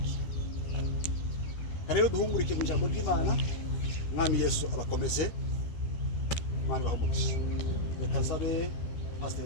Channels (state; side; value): late; right; 12 ms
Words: Rero duhungurike mu ijambo ry'Imana. Mwami Yesu abakomeze, Imana bahumugishe. Reka sabe Pastor